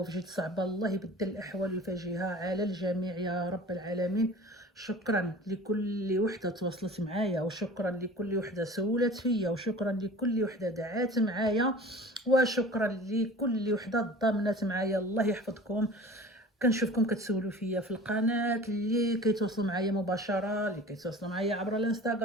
جد صعبه، الله يبدل الاحوال ويفاجئها على الجميع يا رب العالمين. شكرا لكل وحده تواصلت معايا، وشكرا لكل وحده سولت فيا، وشكرا لكل وحده دعات معايا، وشكرا لكل وحده ضامنت معايا. الله يحفظكم. كنشوفكم كتسولوا فيا في القناه، اللي كيتواصلوا معايا مباشره، اللي كيتواصلوا معايا عبر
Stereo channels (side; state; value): both; normal; correlation 0.41